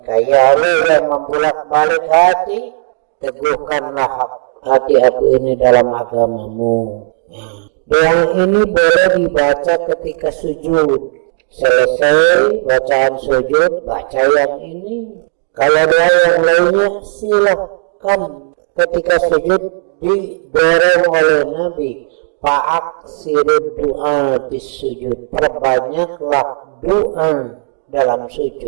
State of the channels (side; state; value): left; silent; digital silence